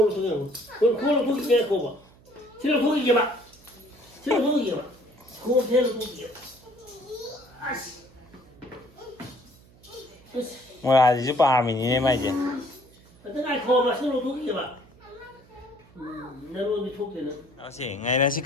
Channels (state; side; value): noise; right; hum, 26 dB below the sound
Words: 속여 그걸로 고기 빼 그거 봐 싫어 고기 이게 봐 싫어 고기 이게 봐 그거 배로 고기 이게 봐 아씨 뭐야 이제 밤이네 말이지 어떤 날 그거 봐 싫어 고기 이게 봐 내가 어디 속대는 à chị ngày nay chị